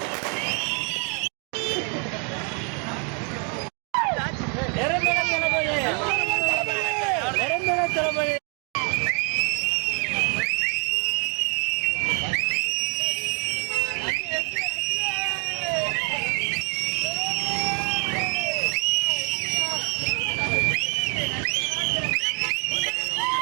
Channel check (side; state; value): left; quieter; 37.3 dB